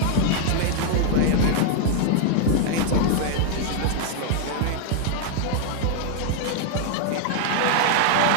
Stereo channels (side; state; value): both; different; correlation 0.00